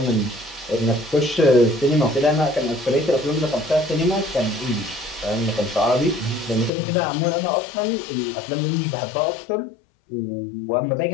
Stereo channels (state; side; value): drops out; right; at 6.7 s